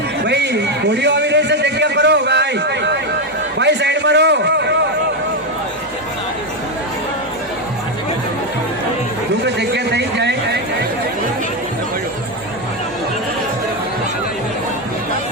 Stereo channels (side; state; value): both; normal; correlation 0.08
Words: ભાઈ ઘોડીઓ આવી રહી છે, જગ્યા કરો ભાઈ. ભાઈ સાઈડમાં રહો. જો કે જગ્યા થઈ જાય.